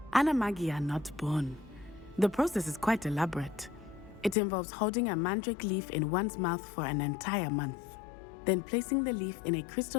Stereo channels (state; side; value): drops out; right; at 4.4 s